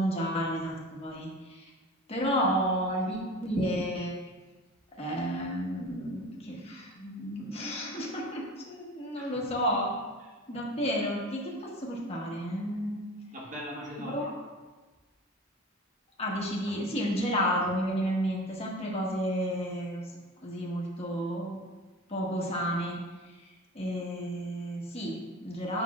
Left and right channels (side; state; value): both; normal; correlation 0.37